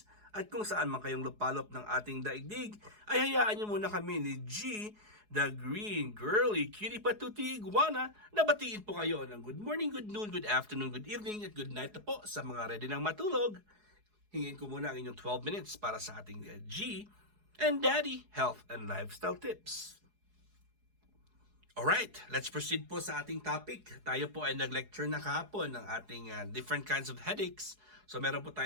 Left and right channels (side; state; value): left; late; 4.8 ms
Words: at kung saan man kayong lupalop ng ating daigdig ay hayaan nyo muna kami ni G, the green girly cutie patuti iguana na batiin po kayo ng good morning, good noon, good afternoon, good evening at good night na po sa mga ready ng matulog. Hingin ko muna ang inyong 12 minutes para sa ating G and Daddy Health and Lifestyle Tips. Alright, let's proceed po sa ating topic. Tayo po ay nag-lecture na kahapon ng ating different kinds of headaches. So meron po